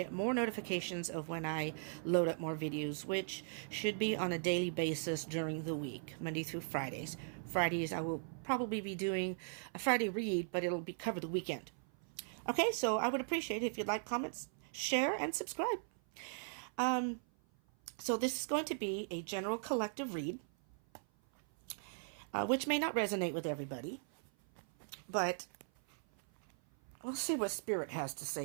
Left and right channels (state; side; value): silent; left; 52 dB below the other